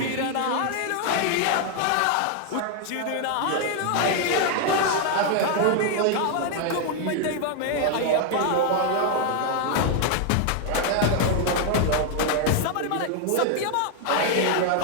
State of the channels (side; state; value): both; different; correlation 0.00